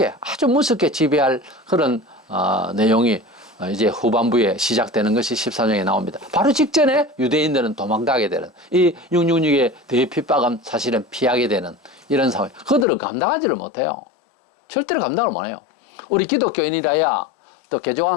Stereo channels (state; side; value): drops out; right; at 12.9 s